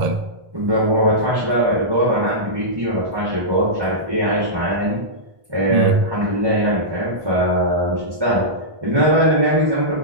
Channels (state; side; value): late; left; 1.1 ms